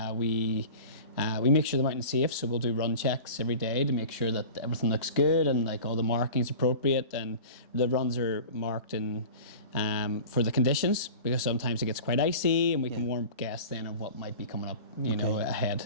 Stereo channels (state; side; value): inverted; both; correlation -0.38